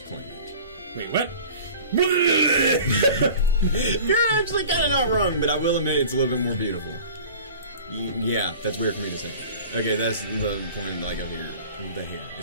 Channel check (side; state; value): both; inverted; correlation -0.42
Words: Wait, what? You're actually kind of not wrong, but I will admit it's a little bit more beautiful. Yeah, that's weird for me to say. Okay, that's the point, like, of here. The hair.